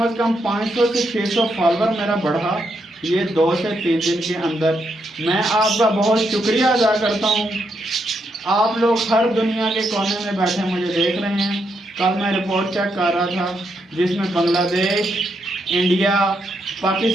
से कम 500 से 600 फॉलोअर मेरा बढ़ा ये 2 से 3 दिन के अंदर। मैं आपका बहुत शुक्रिया अदा करता हूँ। आप लोग हर दुनिया के कोने में बैठे मुझे देख रहे हैं। कल मैं रिपोर्ट चेक कर रहा था जिसमें Bangladesh, India,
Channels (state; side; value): normal; both; correlation 0.80